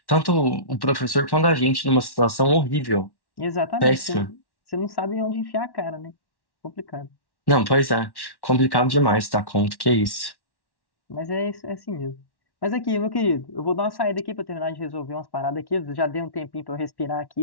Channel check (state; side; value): late; right; 1.1 ms